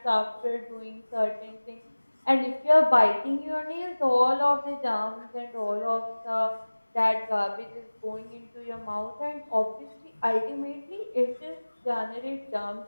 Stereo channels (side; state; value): both; inverted; correlation -1.00